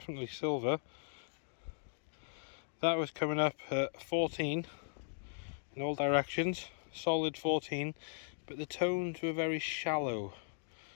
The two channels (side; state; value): right; silent; digital silence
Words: silver. That was coming up at 14 in all directions, solid 14, but the tones were very shallow.